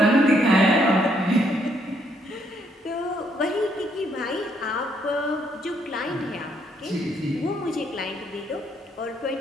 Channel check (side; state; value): both; normal; correlation 0.71